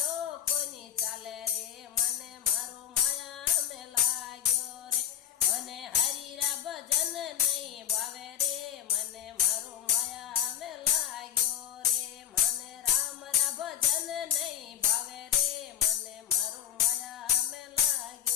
कोनी चाले रे, मने मारो माया में लाग्यो रे। मने हरि रा भजन नहीं भावे रे, मने मारो माया में लाग्यो रे। मने राम रा भजन नहीं भावे रे, मने मारो माया में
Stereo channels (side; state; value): right; quieter; 10.3 dB